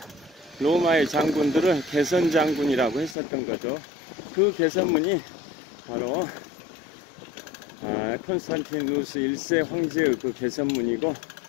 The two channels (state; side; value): drops out; right; at 3.2 s